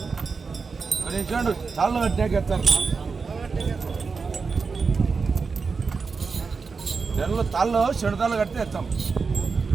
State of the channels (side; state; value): left; quieter; 4.9 dB